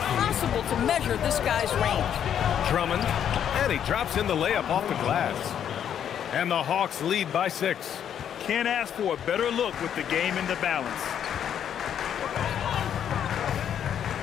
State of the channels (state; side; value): quieter; right; 9.2 dB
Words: to measure this guy's range. Drummond, and he drops in the layup off the glass. And the Hawks lead by 6. Can't ask for a better look with the game in the balance.